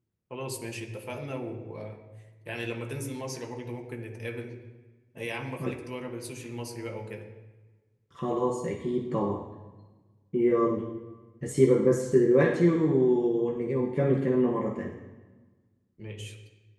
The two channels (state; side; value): identical; both; correlation 1.00